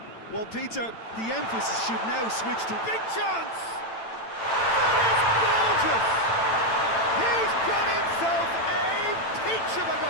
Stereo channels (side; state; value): right; late; 9.0 ms